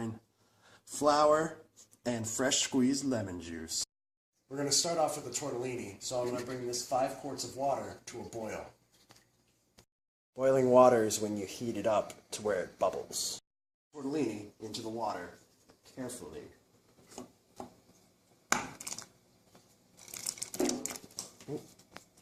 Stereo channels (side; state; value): both; identical; correlation 1.00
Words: flour, and fresh squeezed lemon juice. We're going to start off with the tortellini, so I'm going to bring this 5 quarts of water to a boil. Boiling water is when you heat it up to where it bubbles. Tortellini into the water carefully. Ooh.